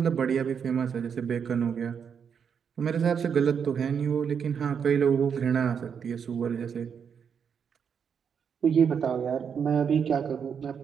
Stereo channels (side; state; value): left; quieter; 7.1 dB